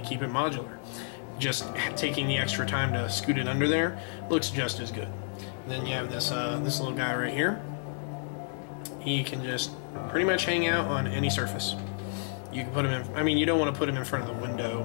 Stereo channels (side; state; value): right; silent; digital silence